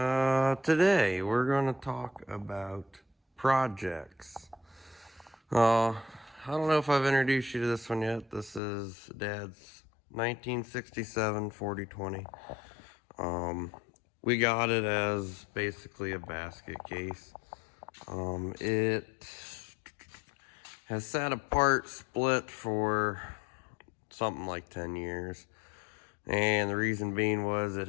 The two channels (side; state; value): right; drops out; at 8.6 s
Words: today we're going to talk about projects. I don't know if I've introduced you to this one yet. This is Dad's 1967 4020. We got it as basically a basket case. It has sat apart, split for something like 10 years. And the reason being was it